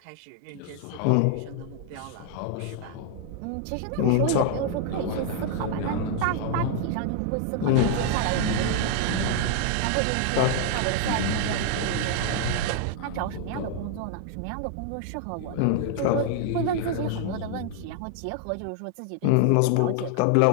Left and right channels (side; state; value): both; different; correlation 0.00